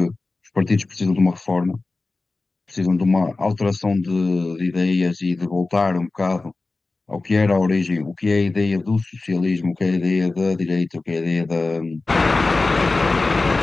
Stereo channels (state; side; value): quieter; right; 3.5 dB